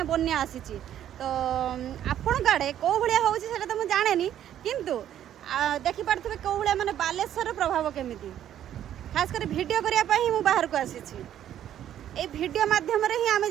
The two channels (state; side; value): quieter; left; 11.0 dB